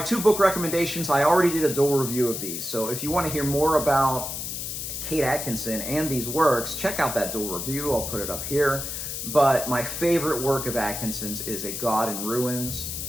2 book recommendations, I already did a dual review of these, so if you want to hear more about Kate Atkinson and these works, check out that dual review. I'll put it up here. But my favorite work of Atkinson's is A God in Ruins,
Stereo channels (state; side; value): noise; left; hiss, 5 dB below the sound